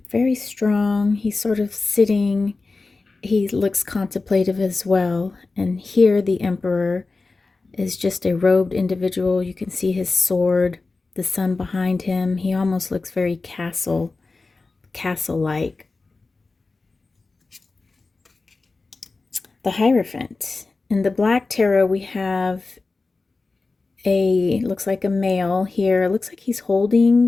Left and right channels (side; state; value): right; quieter; 3.7 dB